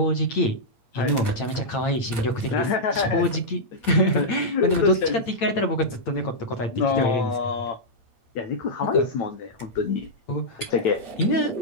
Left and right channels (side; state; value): right; late; 8.9 ms